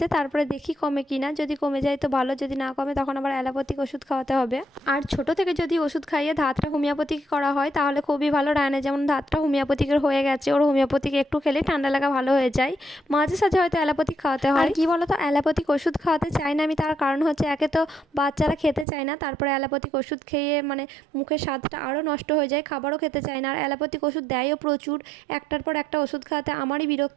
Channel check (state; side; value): drops out; left; at 18.9 s